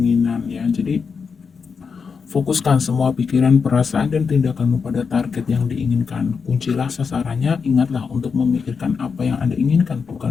ya. Jadi fokuskan semua pikiran, perasaan, dan tindakanmu pada target yang diinginkan. Kuncilah sasarannya, ingatlah untuk memikirkan apa yang Anda inginkan,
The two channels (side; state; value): right; quieter; 5.6 dB